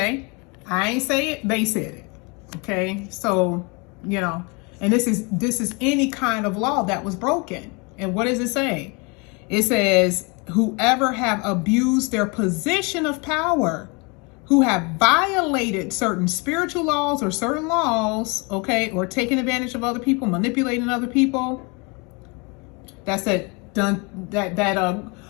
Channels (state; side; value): quieter; right; 30.2 dB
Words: I ain't say it, they said it, okay? So, and this is any kind of law that was broken. And what does it say? It says, whoever have abused their position of power, who have violated certain spiritual laws or certain laws, okay, or taken advantage of other people, manipulating other people. That's it. Done that